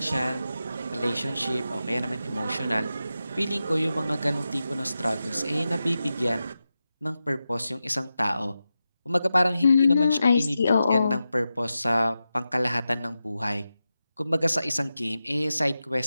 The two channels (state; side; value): inverted; both; correlation -0.91